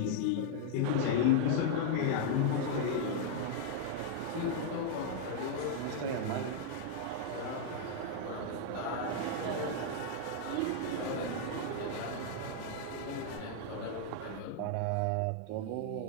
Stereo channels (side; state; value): both; different; correlation -0.01